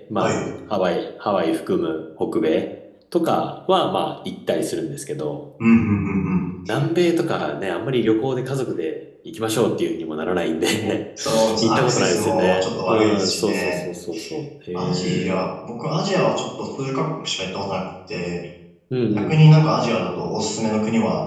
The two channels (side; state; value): both; identical; correlation 1.00